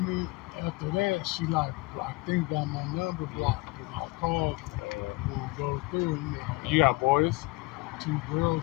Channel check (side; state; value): right; quieter; 23.2 dB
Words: me. After that, she like, I think got my number blocked. I called when it goes through. You got boys? 2 girls